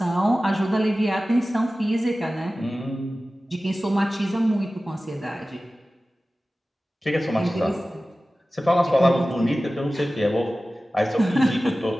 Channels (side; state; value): both; normal; correlation 0.96